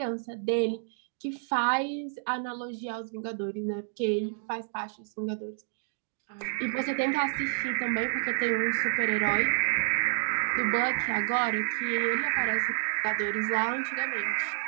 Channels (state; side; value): silent; left; digital silence